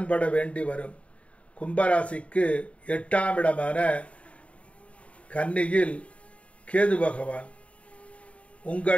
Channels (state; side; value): late; right; 0.064 ms